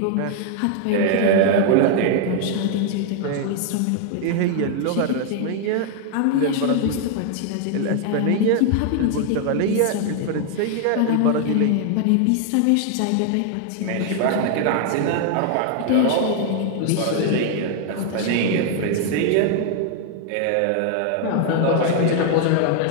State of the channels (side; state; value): both; different; correlation 0.00